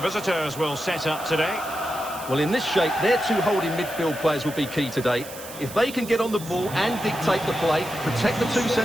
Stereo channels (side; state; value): right; noise; hiss, 14 dB below the sound